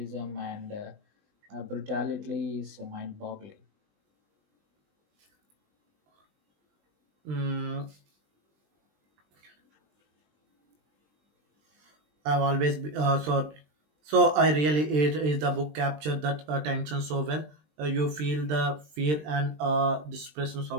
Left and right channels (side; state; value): left; late; 20 ms